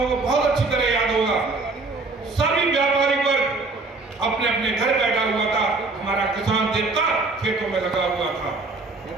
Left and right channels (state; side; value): quieter; left; 3.5 dB